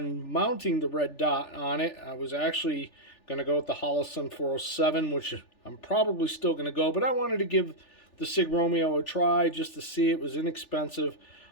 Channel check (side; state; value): right; late; 3.4 ms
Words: mounting the red dot on it. I was actually going to go with the Holosun 407, which I'm probably still going to go, but I wanted to give the Sig Romeo a try just to see. It was inexpensive.